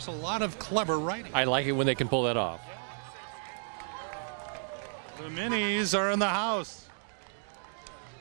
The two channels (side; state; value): left; silent; 56 dB below the other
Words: a lot of clever writing. I like it when they can pull that off. The minis are in the house.